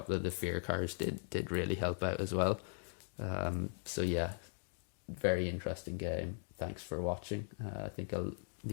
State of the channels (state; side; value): silent; right; 52 dB below the other